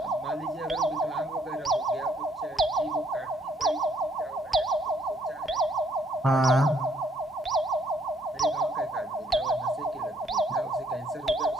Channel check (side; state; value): both; normal; correlation 0.67